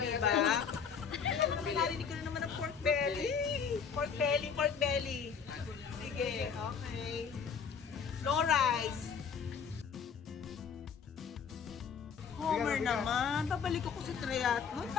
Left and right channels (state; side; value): quieter; right; 6.6 dB